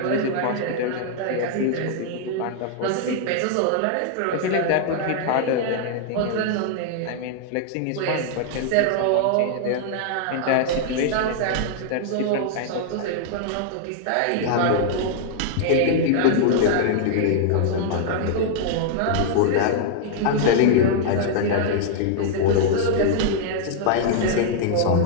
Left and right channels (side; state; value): both; different; correlation -0.01